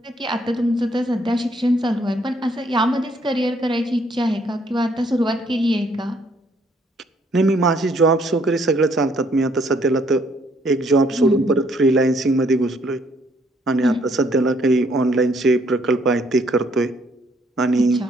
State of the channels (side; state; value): both; normal; correlation 0.67